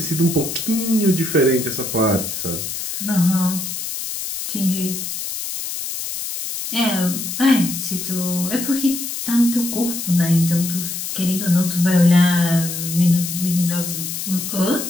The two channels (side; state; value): left; noise; hiss, 5 dB below the sound